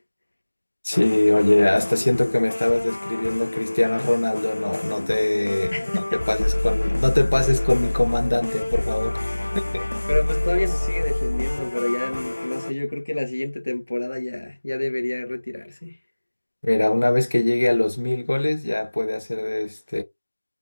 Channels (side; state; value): both; inverted; correlation -1.00